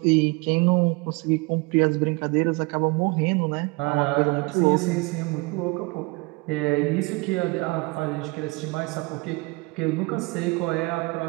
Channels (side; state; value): left; quieter; 26.4 dB